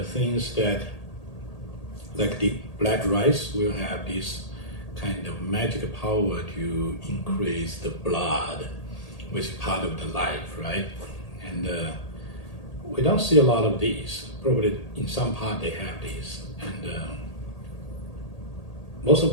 things that, like the black rice, will have this kind of magic power to increase the blood, which is part of the life, right? And we don't see a lot of these. Probably in some part they have these, and most of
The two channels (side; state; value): right; late; 1.8 ms